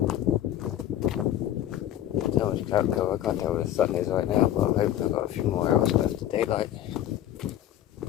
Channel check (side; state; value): right; quieter; 11.9 dB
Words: So much cloud cover, I can't tell where the sun is right now, but I'm hoping I've got a few more hours left of daylight.